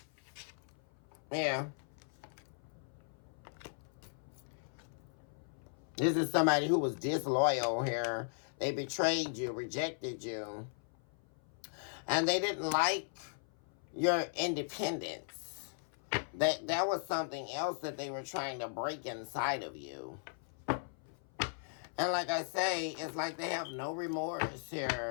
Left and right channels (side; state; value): right; silent; 53 dB below the other